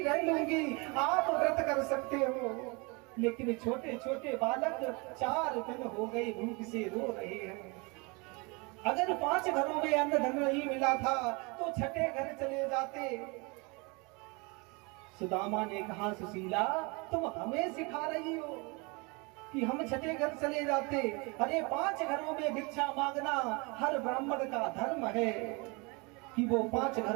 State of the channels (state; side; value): quieter; left; 28.9 dB